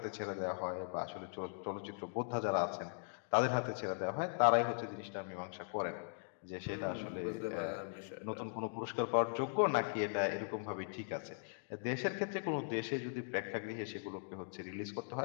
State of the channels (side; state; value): right; silent; digital silence